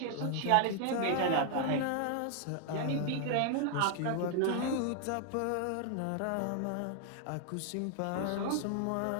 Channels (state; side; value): different; both; correlation 0.00